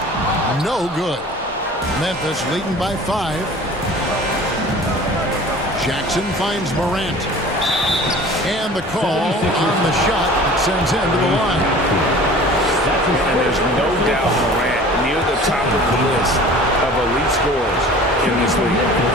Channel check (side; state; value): both; normal; correlation 0.44